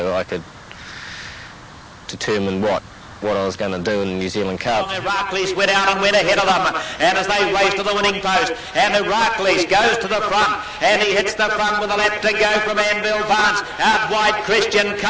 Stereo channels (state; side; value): identical; both; correlation 1.00